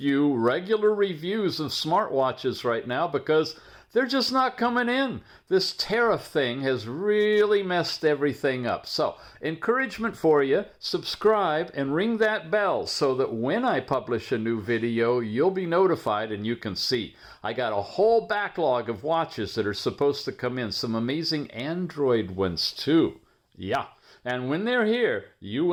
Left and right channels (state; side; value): identical; both; correlation 1.00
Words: regular reviews of smartwatches right now because they're just not coming in. This tariff thing has really messed everything up. So, encouragement for you, subscribe and ring that bell so that when I publish a new video, you'll be notified and you can see. I got a whole backlog of watches that are supposed to come in, some amazing Android ones too. Yeah. And when they're here, you